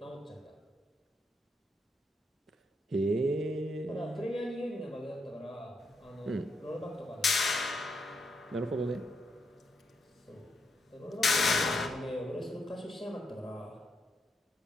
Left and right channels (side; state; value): both; normal; correlation 0.80